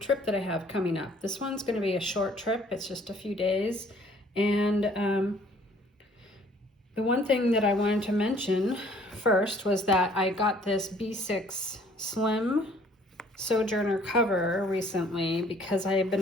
that I have coming up. This one's going to be a short trip. It's just a few days. And the one thing that I wanted to mention first was that I got this B6 Slim Sojourner cover recently because I have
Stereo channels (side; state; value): both; normal; correlation 0.58